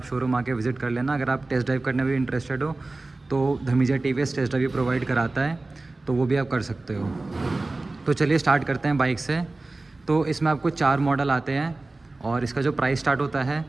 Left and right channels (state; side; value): quieter; left; 3.2 dB